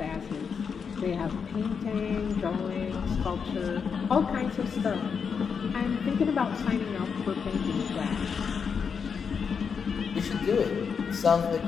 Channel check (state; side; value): quieter; right; 6.2 dB